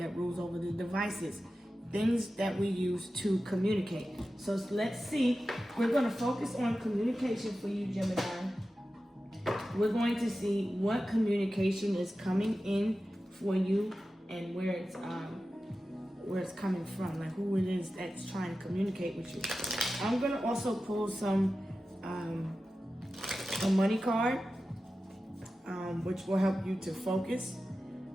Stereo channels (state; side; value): normal; both; correlation 0.93